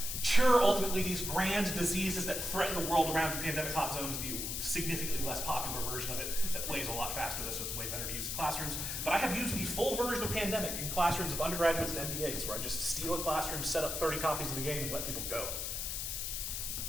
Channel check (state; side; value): noise; left; hiss, 3 dB below the sound